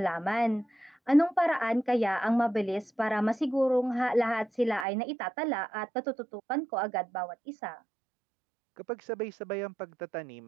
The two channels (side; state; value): left; drops out; at 4.9 s